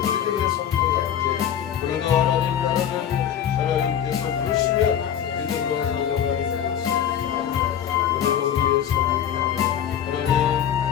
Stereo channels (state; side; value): quieter; right; 9.6 dB